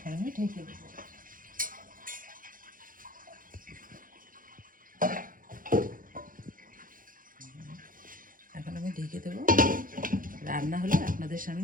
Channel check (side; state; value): left; late; 0.40 ms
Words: আমি ঢেকে দেবো। এখন আমি ঢেকে দেবো, রান্না হলে আপনাদের